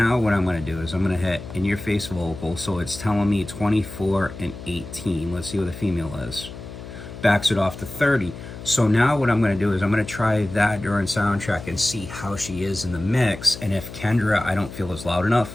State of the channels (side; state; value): left; noise; hum, 13 dB below the sound